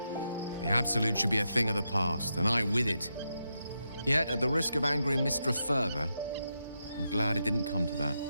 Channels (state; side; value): inverted; both; correlation -0.85